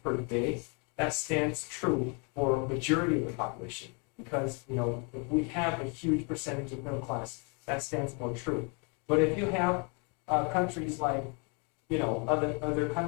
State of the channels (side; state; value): right; quieter; 34.9 dB